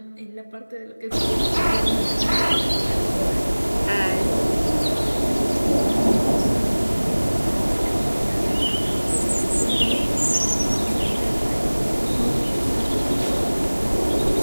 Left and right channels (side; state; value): both; inverted; correlation -1.00